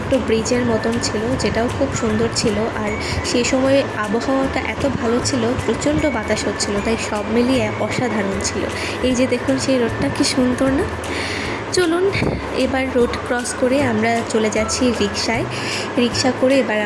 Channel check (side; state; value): both; identical; correlation 1.00